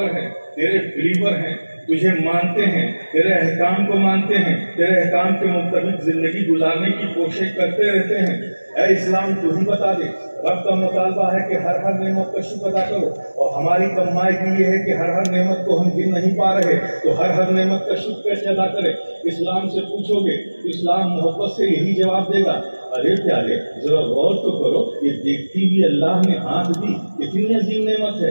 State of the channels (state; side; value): inverted; both; correlation -1.00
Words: ہیں، تیرے بلیور ہیں، تجھے مانتے ہیں، تیرے احکام کو مانتے ہیں، تیرے احکام کے مطابق زندگی گزارنے کی کوشش کرتے رہتے ہیں. اے اسلام، تو ہی بتا دے. رب کا مطالبہ ہے کہ ہر نعمت کا شکر ادا کرو، اور ہماری کمائی یہ ہے کہ ہر نعمت کو ہم گن نہیں پا رہے، تو ہر نعمت کا شکر کیسے ادا کرے؟ اسلام سے پوچھو گے، اسلام محبت سے یہی جواب دے گا. ارے پیارے، ذرا غور تو کرو، یہ دیکھتی بھی اللہ نے آنکھ دی، کتنی عظیم نعمت ہے.